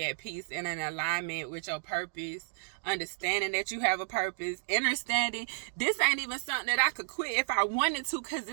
at peace and in alignment with your purpose, understanding that you have a purpose, understanding this ain't even something that I could quit if I wanted to, because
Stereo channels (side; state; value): left; silent; digital silence